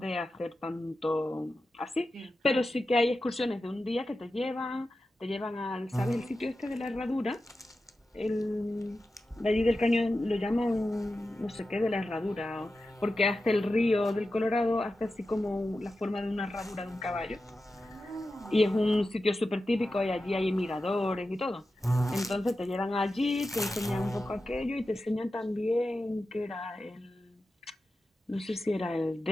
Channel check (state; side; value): normal; both; correlation 0.92